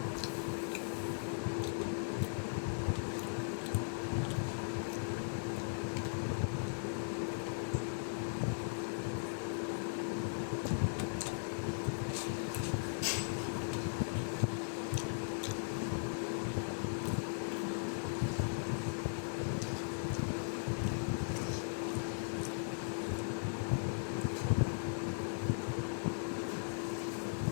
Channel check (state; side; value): silent; right; digital silence